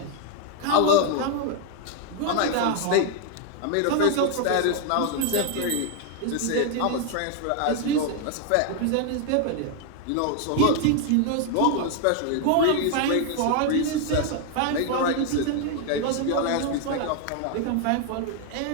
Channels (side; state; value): both; different; correlation 0.00